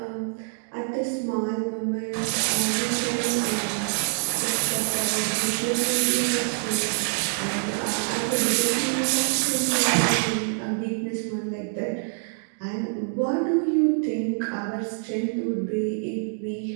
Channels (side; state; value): left; silent; 55 dB below the other